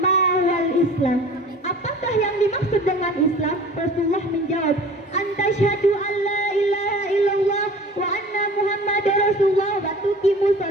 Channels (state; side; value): normal; both; correlation 0.44